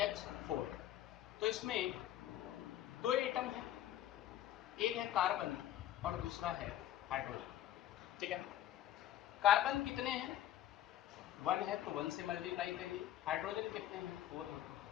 तो इसमें दो एटम है, एक है कार्बन और दूसरा है हाइड्रोजन। ठीक है, कार्बन कितने हैं? 1 है तो 1 से मल्टीप्लाई करिए। हाइड्रोजन कितने हैं? 4 है तो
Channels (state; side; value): quieter; right; 12.4 dB